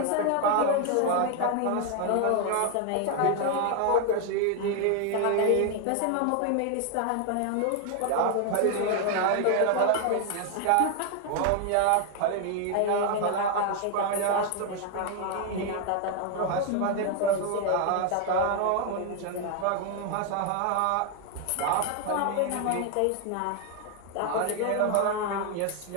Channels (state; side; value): different; both; correlation 0.00